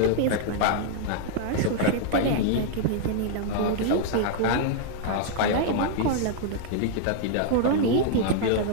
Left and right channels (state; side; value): different; both; correlation 0.00